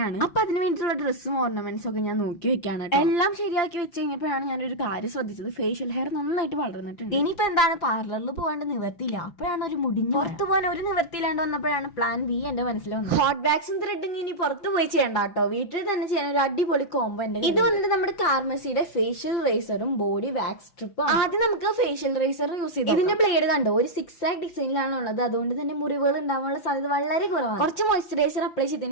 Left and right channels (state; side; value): late; right; 6.0 ms